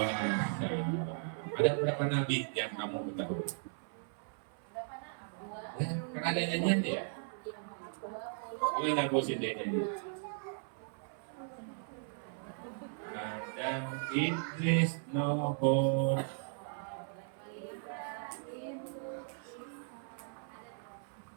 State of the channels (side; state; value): left; silent; 53 dB below the other